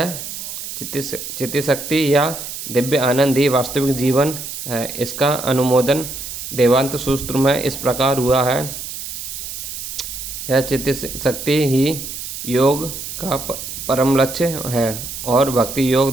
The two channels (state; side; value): noise; right; hiss, 8 dB below the sound